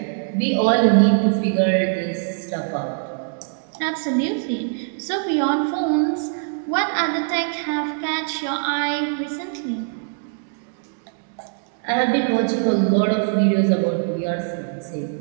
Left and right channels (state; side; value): silent; left; 64 dB below the other